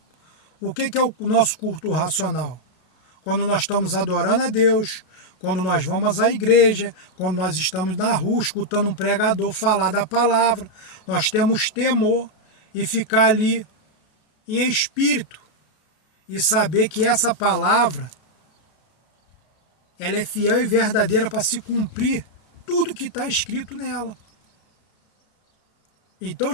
O que é o nosso culto racional? Quando nós estamos adorando a Deus, quando nós vamos à igreja, quando nós estamos na rua escutando um pregador falar da palavra, nós temos temor e ficar ali em espírito e saber que essa palavra ela é fiel e verdadeira para se cumprir tudo que está escrito nela. Então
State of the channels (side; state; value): right; late; 32 ms